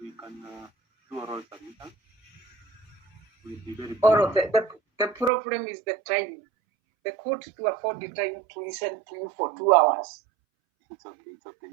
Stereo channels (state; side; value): drops out; left; at 5.3 s